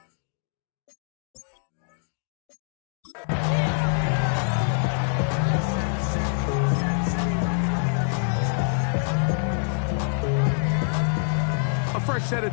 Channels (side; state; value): right; silent; 61 dB below the other